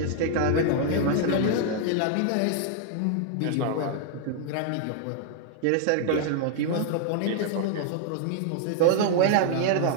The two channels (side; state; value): both; different; correlation 0.00